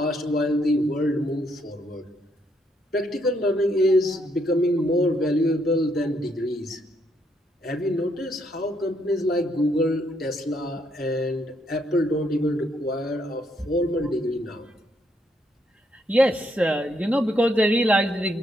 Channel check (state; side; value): normal; both; correlation 0.74